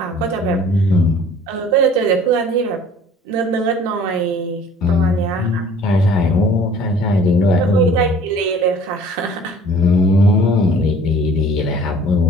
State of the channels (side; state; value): both; normal; correlation 0.51